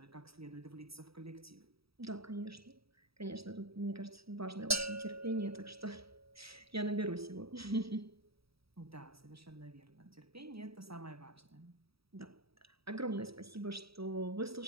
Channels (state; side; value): late; left; 0.76 ms